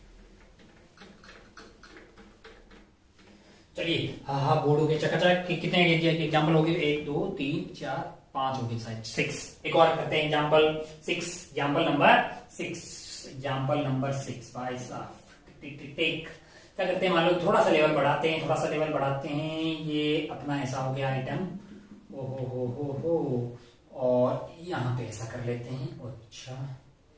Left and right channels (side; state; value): both; identical; correlation 1.00